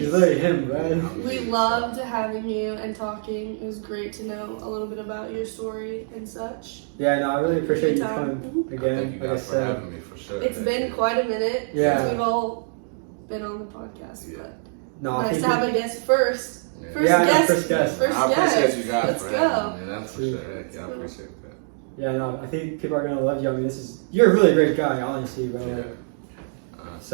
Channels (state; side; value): silent; left; digital silence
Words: literally him, Yeah, right? I'm We me, loved so. having you and talking. It was great to know a little bit about your story and such. Yeah, no, I really appreciate you Good time. coming again. Thank you Like I guys for said, having me for sure. It's Thank been you. quite a minute Yeah. since we've all been on the podcast, Yeah. but no, I nice think to have a guest first. Yeah. First Yeah, I know, guest. first guest. First I appreciate guest. you guys Let's for go. having me. That's for Sweet. sure. Yeah, I appreciate that. yeah, no, I think people are gonna love you. I mean, you're a really great guy, honestly, bro. Yeah.